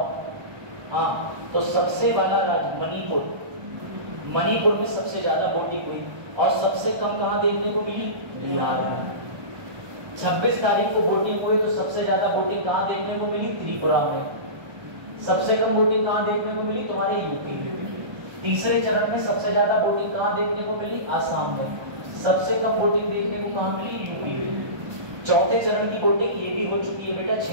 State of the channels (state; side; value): late; left; 1.2 ms